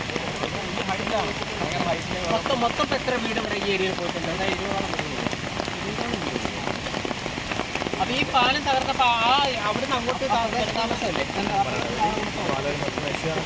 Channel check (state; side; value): identical; both; correlation 1.00